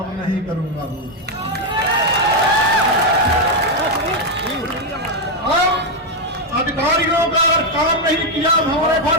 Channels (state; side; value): normal; both; correlation 0.03